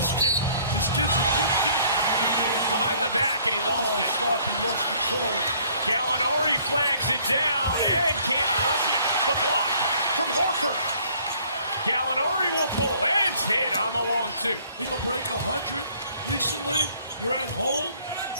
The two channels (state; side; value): inverted; both; correlation -0.59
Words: kid. His kid's a good kid. behind the back, and he lost it. Stop, he lost control. Gallinari flags it down and can't flush it. The block from Horford. Gallinari will pull and hit on the long two. He'll break 100 recently. You're at home.